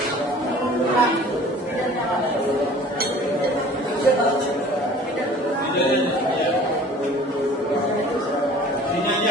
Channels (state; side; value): normal; both; correlation 0.47